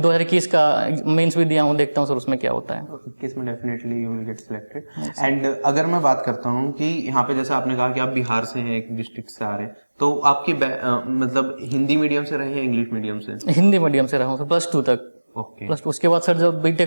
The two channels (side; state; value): both; inverted; correlation -1.00